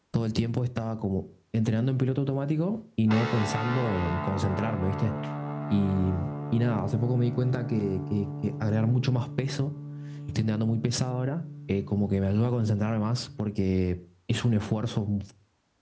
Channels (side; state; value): both; identical; correlation 1.00